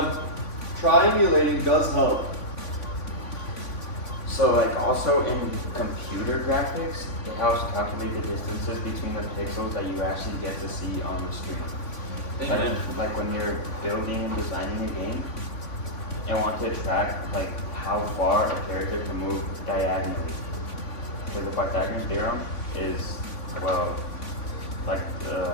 triangulating does help. So like also in computer graphics, it helps calculate the distances between the pixels that you actually get to see on the screen. Like when you're building and designing a game and want to track like how far a character can move diagonally. Because the Pythagorean theorem is, well, like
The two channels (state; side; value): late; right; 3.5 ms